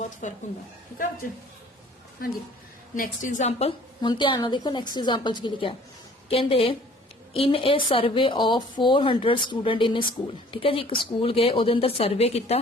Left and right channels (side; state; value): both; normal; correlation 0.53